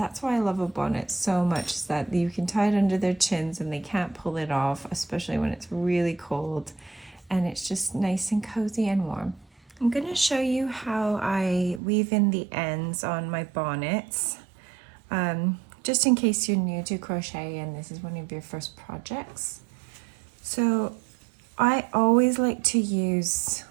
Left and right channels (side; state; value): left; drops out; at 11.8 s